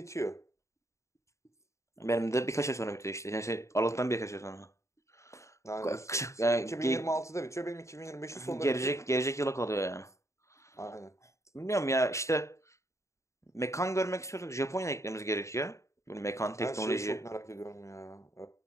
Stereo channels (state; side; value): late; right; 0.14 ms